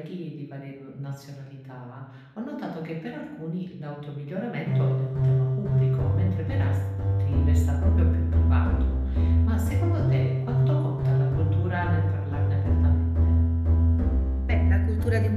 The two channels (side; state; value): both; identical; correlation 1.00